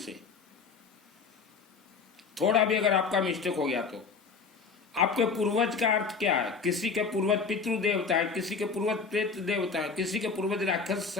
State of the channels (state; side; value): quieter; right; 5.1 dB